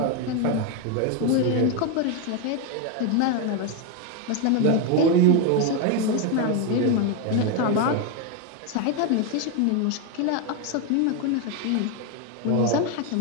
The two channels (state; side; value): different; both; correlation 0.02